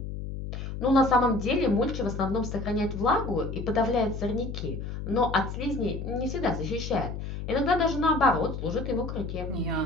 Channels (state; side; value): noise; left; hum, 6 dB below the sound